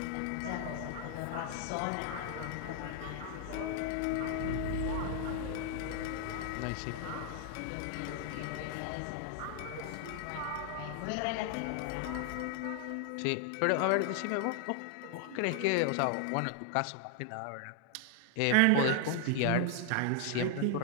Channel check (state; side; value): different; both; correlation 0.00